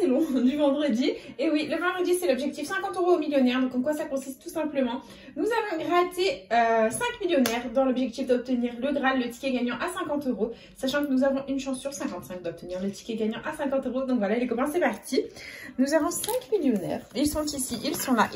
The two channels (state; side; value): identical; both; correlation 1.00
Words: long du vendredi. Et oui, le vendredi, c'est l'objectif 50 € au millionnaire. Donc, en quoi ça consiste tout simplement? Nous avons gratté 5 millionnaires dans l'objectif d'obtenir le Graal, le ticket gagnant à 50 €. Sachant que nous avons une chance sur 55 d'obtenir le ticket gagnant à 50 €. Donc voilà, les copains, c'est parti. Nous avons 5 millionnaires. Ils sont ici, ils sont là,